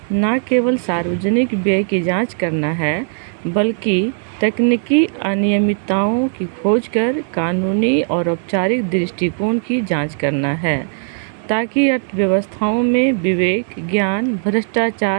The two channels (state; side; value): silent; left; 63 dB below the other